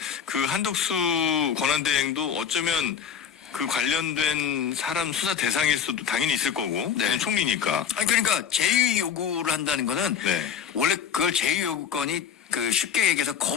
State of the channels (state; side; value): quieter; right; 8.1 dB